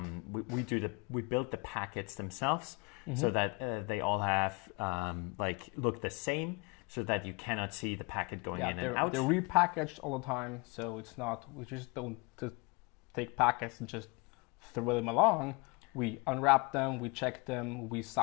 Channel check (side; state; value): right; quieter; 29.3 dB